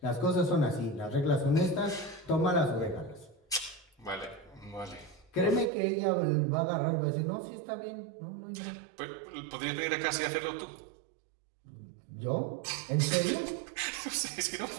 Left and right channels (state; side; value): drops out; left; at 5.7 s